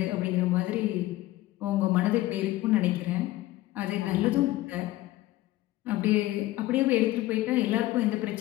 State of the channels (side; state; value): right; quieter; 16.8 dB